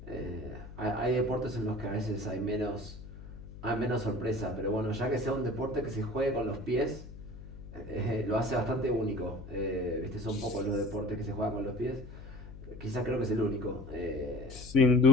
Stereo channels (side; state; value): left; noise; hum, 14 dB below the sound